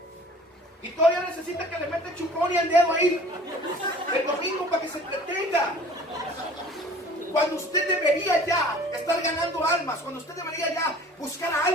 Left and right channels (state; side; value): normal; both; correlation 0.47